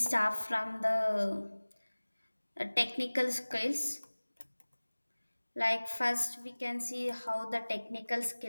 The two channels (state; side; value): inverted; both; correlation -1.00